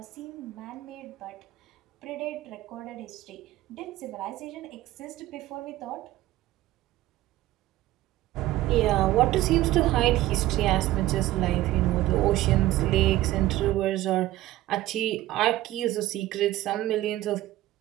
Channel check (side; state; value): left; quieter; 15.7 dB